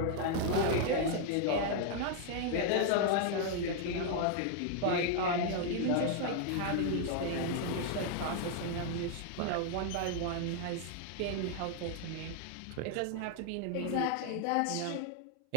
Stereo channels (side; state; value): both; different; correlation 0.00